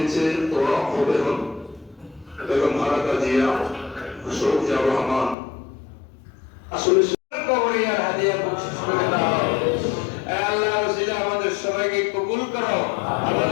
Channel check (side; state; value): right; drops out; at 5.4 s